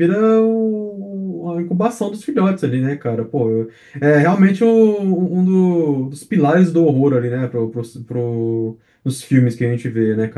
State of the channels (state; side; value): identical; both; correlation 1.00